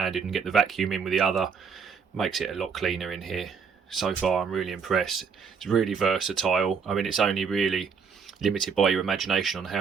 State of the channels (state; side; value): quieter; left; 6.0 dB